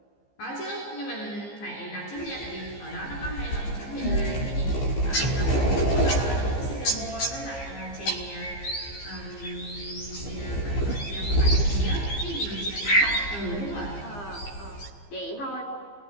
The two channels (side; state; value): right; late; 15 ms